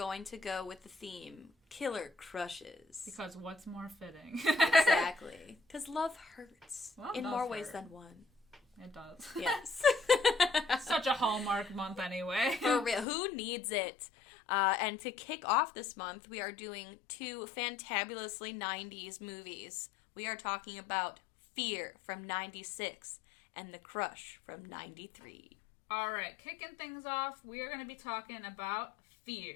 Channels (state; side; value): drops out; right; at 13.1 s